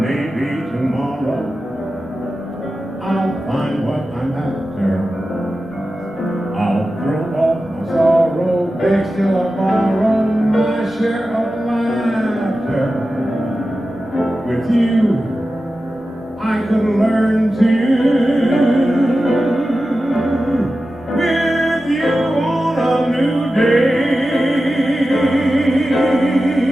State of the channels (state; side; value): normal; both; correlation 0.93